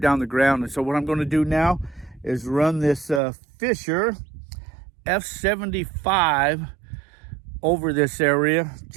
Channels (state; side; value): drops out; left; at 3.2 s